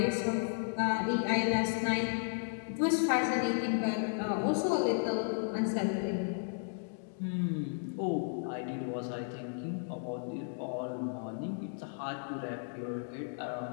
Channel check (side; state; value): right; silent; digital silence